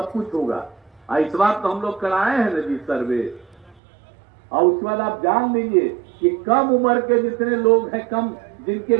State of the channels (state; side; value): drops out; left; at 3.8 s